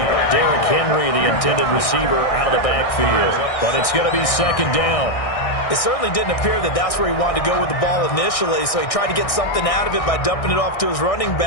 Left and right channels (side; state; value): right; late; 1.6 ms